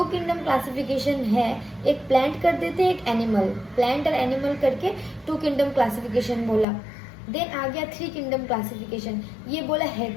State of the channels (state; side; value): drops out; right; at 6.7 s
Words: किंगडम क्लासिफिकेशन है, एक प्लांट कर देते हैं एक एनिमल, प्लांट और एनिमल करके टू किंगडम क्लासिफिकेशन बोला। देन आ गया थ्री किंगडम क्लासिफिकेशन, ये बोला